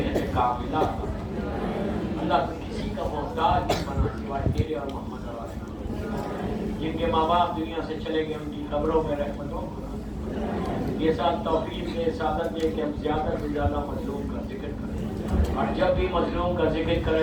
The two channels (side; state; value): both; identical; correlation 1.00